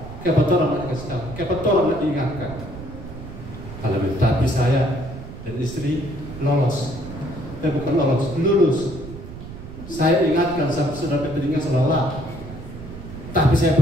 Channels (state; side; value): noise; right; rumble, 12 dB below the sound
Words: Kenapa orang nak dikasih tahu? Kenapa orang nak diingatkan? Haleluya. Tapi saya dan istri lolos. Bukan lolos, lulus. Saya ingatkan sampai sudah telinga selalu. Tapi saya